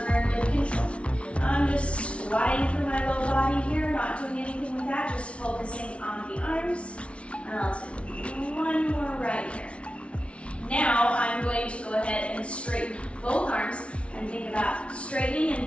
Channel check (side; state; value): right; late; 0.061 ms